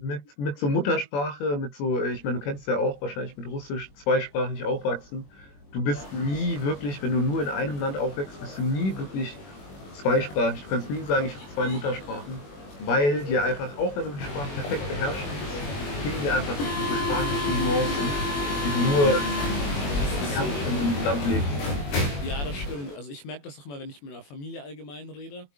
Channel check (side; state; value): right; late; 21 ms